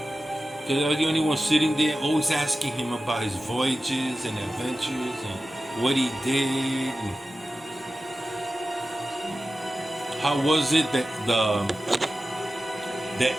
Because I was the only one sitting there, always asking him about his voyages and adventures and what he did. And how was it that the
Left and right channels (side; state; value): both; normal; correlation 0.94